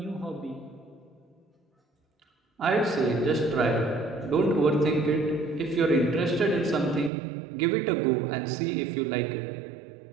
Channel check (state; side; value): drops out; left; at 7.1 s